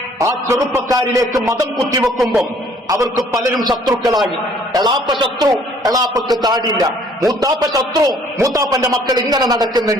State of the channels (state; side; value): normal; both; correlation 0.59